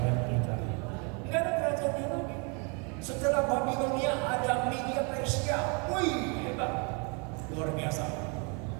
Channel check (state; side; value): quieter; left; 34.9 dB